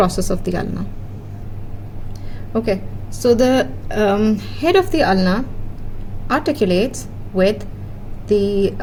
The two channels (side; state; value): both; identical; correlation 1.00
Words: of the ulna. Okay, so the head of the ulna articulates with the